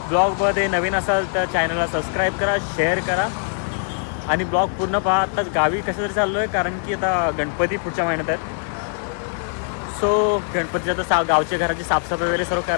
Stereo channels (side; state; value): right; silent; 61 dB below the other